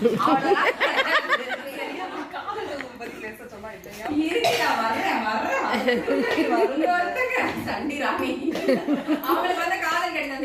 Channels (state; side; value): identical; both; correlation 1.00